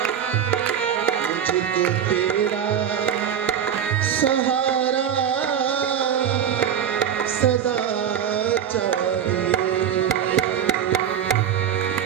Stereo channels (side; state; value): left; quieter; 8.9 dB